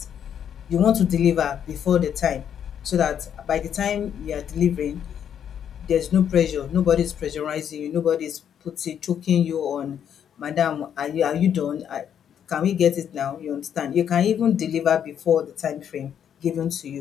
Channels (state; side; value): quieter; right; 8.9 dB